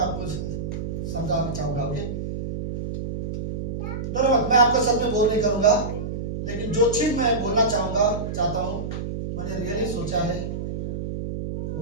आपको समझाना चाहूंगा। ओके, धन्यवाद। मैं आपको सब में बोल नहीं करूंगा, लेकिन जो चीज मैं बोलना चाहता हूँ, मैंने रियली सोचा है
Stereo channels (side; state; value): right; noise; hum, 5 dB below the sound